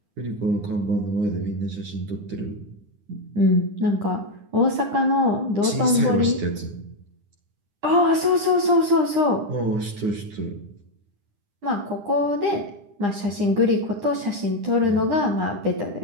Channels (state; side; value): late; left; 9.9 ms